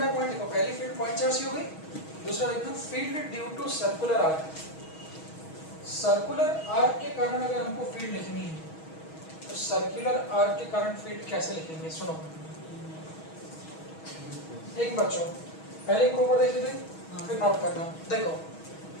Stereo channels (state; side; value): late; right; 6.3 ms